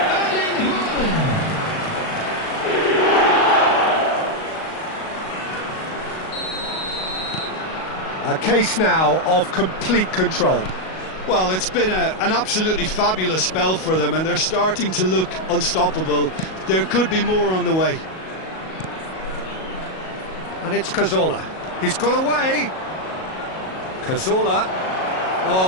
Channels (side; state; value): right; late; 38 ms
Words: A case now of complete control. Well, it's been an absolutely fabulous spell for them, and they're starting to look unstoppable. There could be more on the way. And it's Cazorla. He's got away. Cazorla.